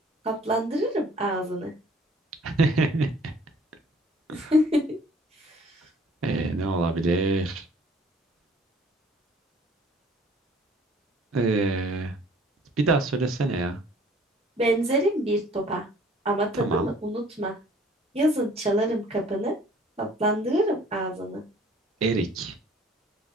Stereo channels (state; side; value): normal; both; correlation 0.54